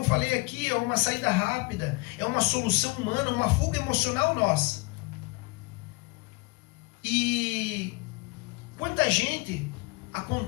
falei aqui, é uma saída rápida, é uma solução humana, uma fuga emocional nossa. E quanta gente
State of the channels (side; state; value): right; quieter; 27.0 dB